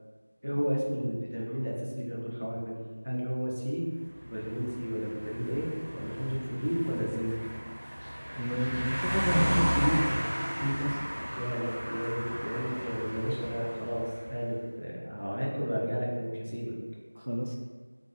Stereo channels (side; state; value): both; inverted; correlation -1.00